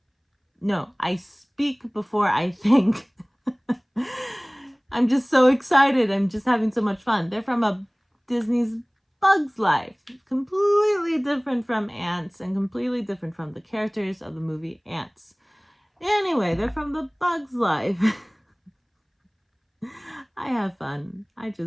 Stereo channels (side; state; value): both; identical; correlation 1.00